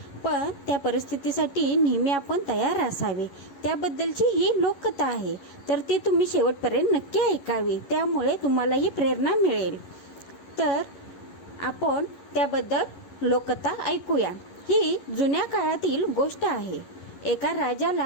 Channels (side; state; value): right; late; 11 ms